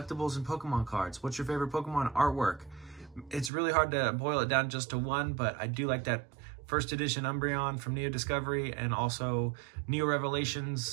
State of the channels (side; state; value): left; drops out; at 3.5 s